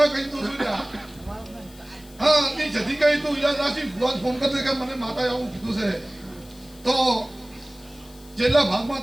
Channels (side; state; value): left; noise; hiss, 23 dB below the sound